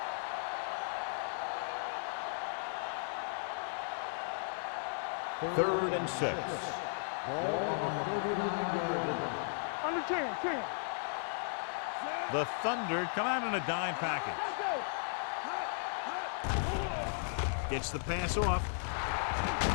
Third and 6. Ball on the 39-yard line. Under 10. The Thunder come out in a dime package. Let's go. Gets the pass off.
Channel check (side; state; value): right; silent; digital silence